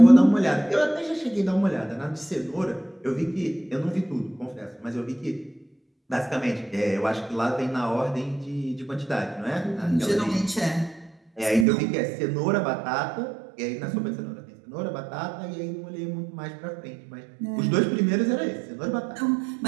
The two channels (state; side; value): drops out; left; at 11.7 s